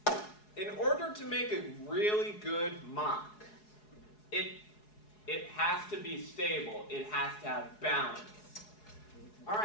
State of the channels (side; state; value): right; late; 4.7 ms